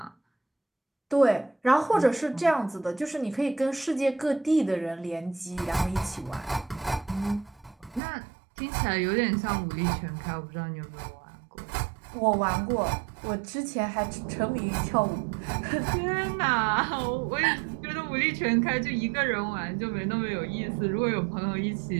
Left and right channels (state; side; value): drops out; left; at 8.0 s